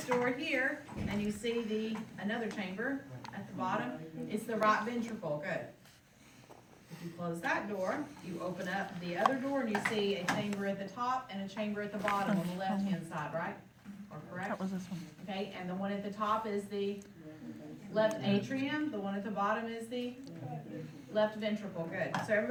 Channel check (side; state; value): both; identical; correlation 1.00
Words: door here, and you see another chamber at the bottom. It's the right ventricle, good. If you close that door, you open up the other door, and you see a chamber at the top and a chamber at the bottom on the left-hand side, right? Or correct? That was this one. Okay, and the one at the top is the left atrium, the one at the bottom is the left ventricle, good. So